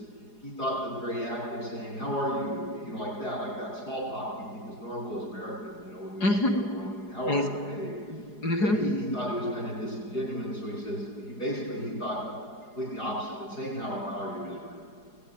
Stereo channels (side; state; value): right; late; 4.8 ms